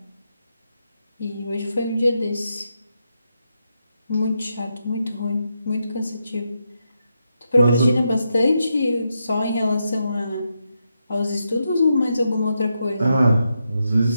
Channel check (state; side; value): inverted; both; correlation -0.84